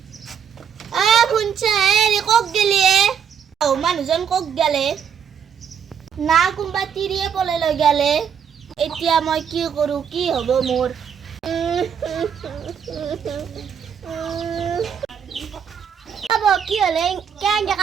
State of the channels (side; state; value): left; quieter; 7.7 dB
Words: কক গেলি মানুহজন কক গেলে না কোনবা তিৰিয়ে পলে লৈ গেলে। এতিয়া মই কি কৰো, কি হব মোৰ? কি হলে কেনেকে